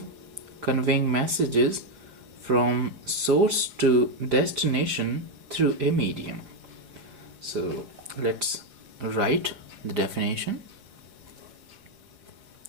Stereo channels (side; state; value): left; late; 5.2 ms